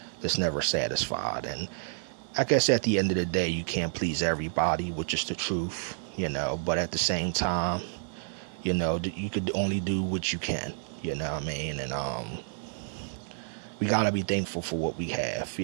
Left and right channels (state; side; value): silent; left; digital silence